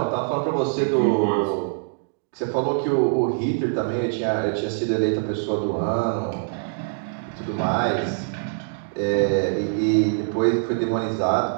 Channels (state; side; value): silent; left; digital silence